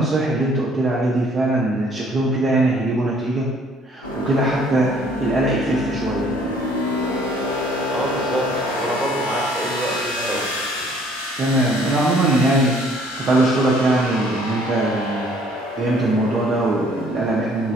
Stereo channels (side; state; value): both; normal; correlation 0.59